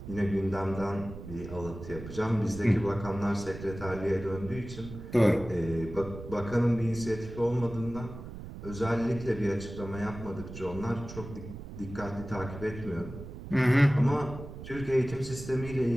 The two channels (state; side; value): noise; right; rumble, 11 dB below the sound